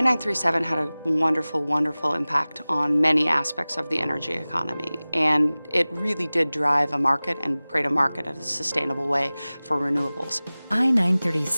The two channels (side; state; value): both; inverted; correlation -0.99